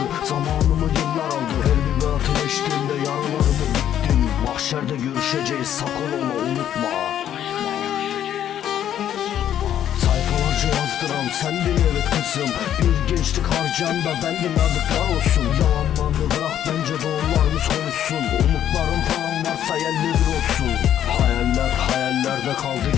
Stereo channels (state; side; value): quieter; right; 10.6 dB